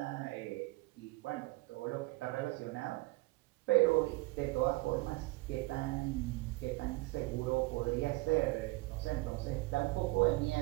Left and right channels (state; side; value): quieter; left; 22.5 dB